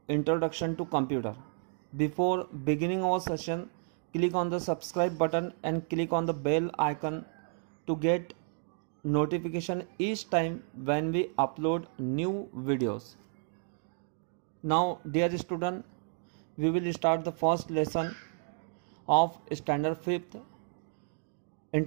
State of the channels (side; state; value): left; silent; 55 dB below the other